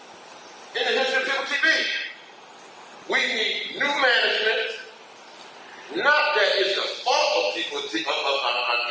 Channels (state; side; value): identical; both; correlation 1.00